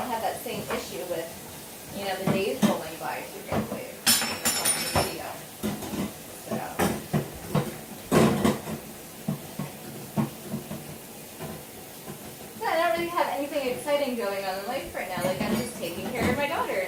same issue with the days rolling by too quickly on the video. So. Yeah, I don't really have anything exciting going on in life right now. I'm just taking care of my daughter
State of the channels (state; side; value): identical; both; correlation 1.00